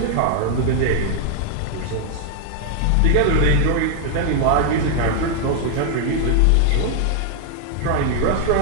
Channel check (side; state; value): both; different; correlation 0.00